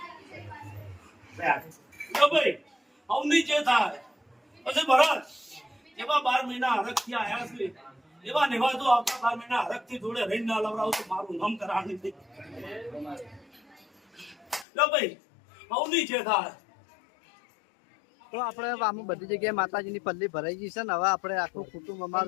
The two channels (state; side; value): drops out; right; at 14.7 s